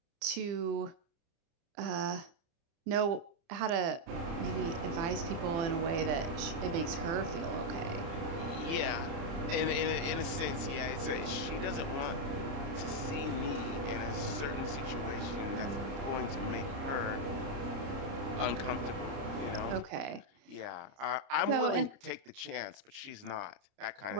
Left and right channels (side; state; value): left; late; 30 ms